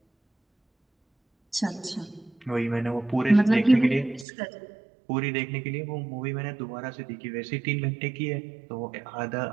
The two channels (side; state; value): left; drops out; at 4.2 s